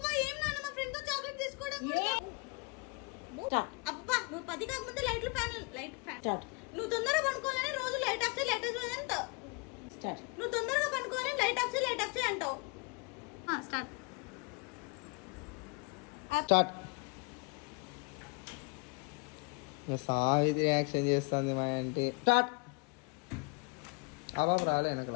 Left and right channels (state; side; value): quieter; right; 31.3 dB